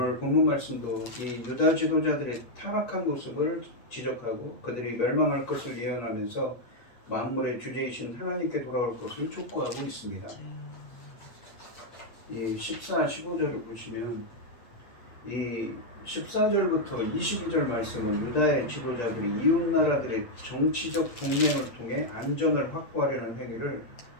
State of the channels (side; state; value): right; late; 8.9 ms